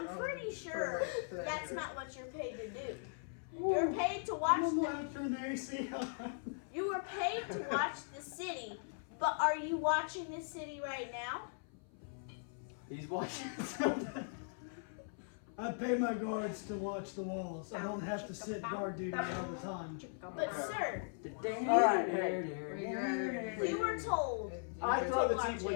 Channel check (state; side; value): silent; right; 52 dB below the other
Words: pretty sure that's not what you're paid to do. You're paid to watch I'm the. gonna turn the AC on. You were paid to watch the city, but are you watching the city right now? he's watching something. I pay my guards to watch the walls. I don't have to sit guard duty all the time. But sir, All right, hey. you were told. I throw the Watch tiefling